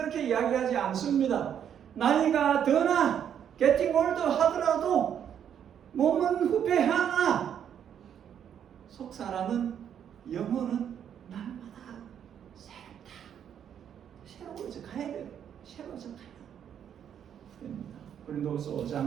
이야기하지 않습니다. 나이가 드나 getting older 하더라도 몸은 후패하나 속사라는 영혼은 날마다 새롭다. 새로워져 가야 돼요. 새로워져 가야 됩니다. 고린도후서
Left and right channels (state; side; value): quieter; left; 9.0 dB